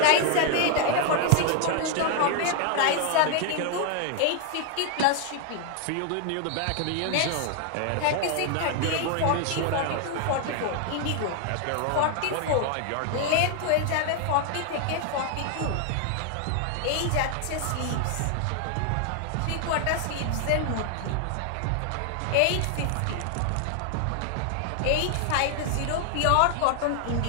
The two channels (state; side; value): different; both; correlation 0.00